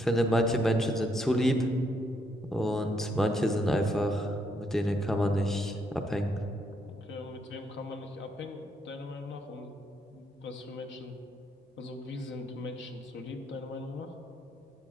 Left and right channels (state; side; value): normal; both; correlation 0.74